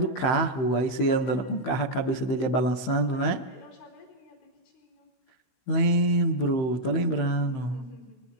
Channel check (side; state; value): right; late; 16 ms